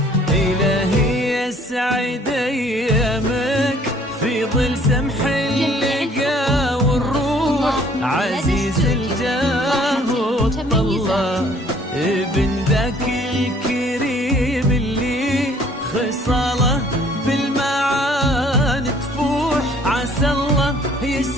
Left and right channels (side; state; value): both; normal; correlation 0.58